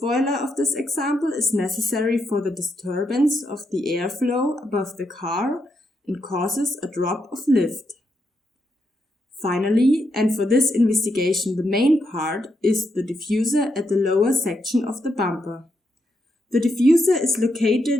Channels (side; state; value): both; normal; correlation 0.81